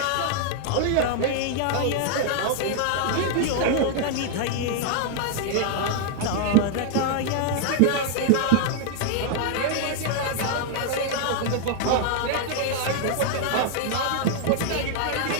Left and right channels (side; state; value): both; different; correlation 0.00